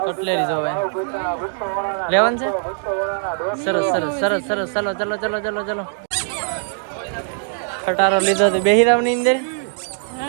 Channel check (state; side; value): silent; left; 65 dB below the other